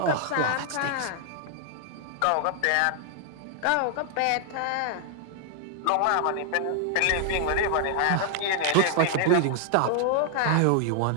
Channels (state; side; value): different; both; correlation 0.00